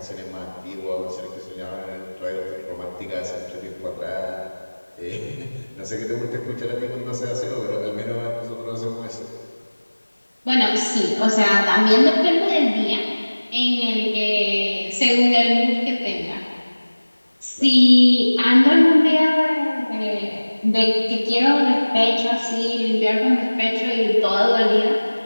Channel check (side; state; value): both; inverted; correlation -1.00